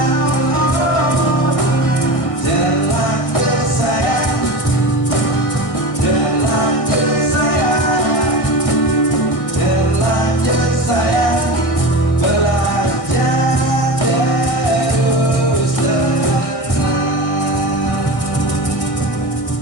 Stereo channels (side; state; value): right; late; 1.6 ms